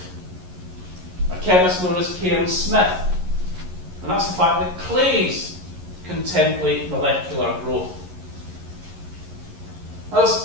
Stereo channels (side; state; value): left; late; 11 ms